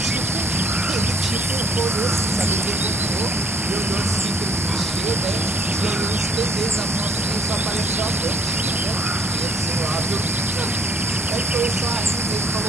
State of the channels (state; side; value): normal; both; correlation 0.58